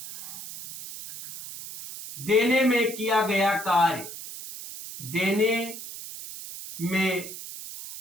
देने में किया गया कार्य, देने में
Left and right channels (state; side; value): noise; right; hiss, 11 dB below the sound